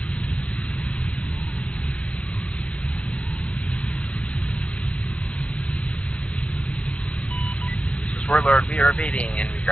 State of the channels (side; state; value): right; late; 0.062 ms